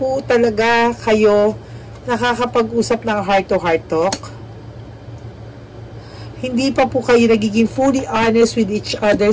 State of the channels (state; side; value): identical; both; correlation 1.00